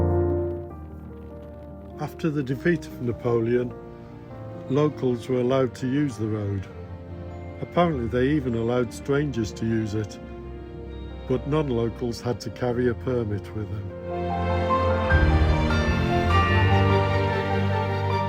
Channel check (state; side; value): identical; both; correlation 1.00